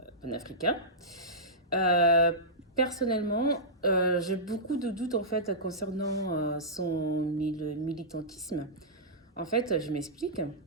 panafricains. Euh, Personnellement, j'ai beaucoup de doutes en fait concernant militantisme. En fait, je m'explique.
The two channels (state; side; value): normal; both; correlation -0.16